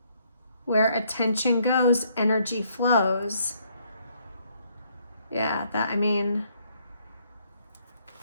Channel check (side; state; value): both; inverted; correlation -0.69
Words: Where attention goes, energy flows. Yeah,